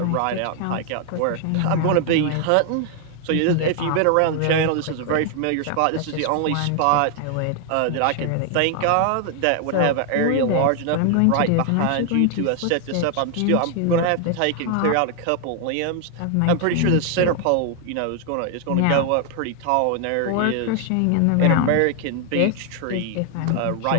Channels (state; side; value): different; both; correlation 0.00